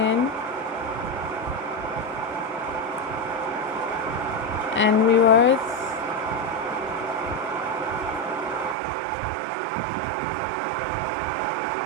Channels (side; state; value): left; drops out; at 8.8 s